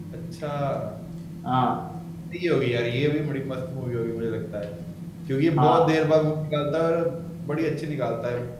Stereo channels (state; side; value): identical; both; correlation 1.00